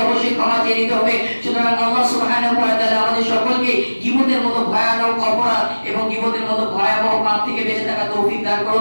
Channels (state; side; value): inverted; both; correlation -1.00